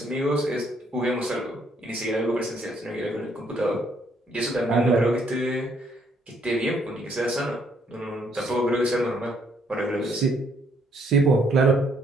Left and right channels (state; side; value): normal; both; correlation 0.69